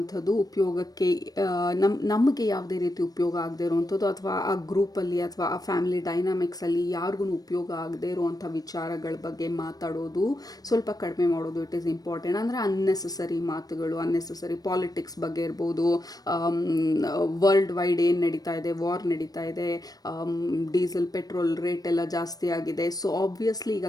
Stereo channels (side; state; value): right; late; 0.18 ms